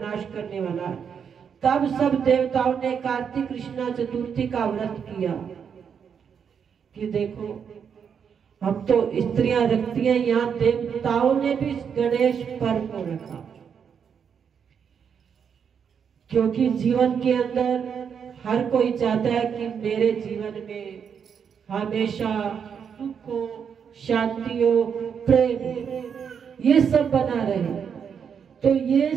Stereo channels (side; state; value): left; quieter; 7.2 dB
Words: करने वाला है। तब सब देवताओं ने कार्तिक कृष्णा चतुर्थी का व्रत किया। कि देखो, हम तो स्त्रियां रखती हैं, यहाँ देवताओं ने भी गणेश पर्व को रखा, क्योंकि जीवन के अंदर हर कोई चाहता है कि मेरे जीवन में हमेशा सुख हो, शांति हो, प्रेम, ये सब बना रहे। तो ये